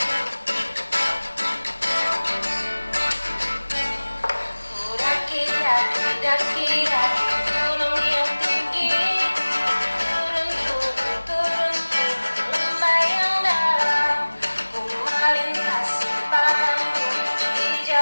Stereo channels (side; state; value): both; inverted; correlation -1.00